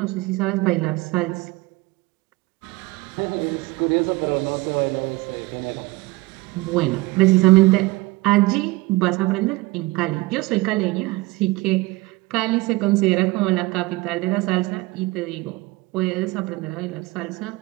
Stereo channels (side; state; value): left; quieter; 21.0 dB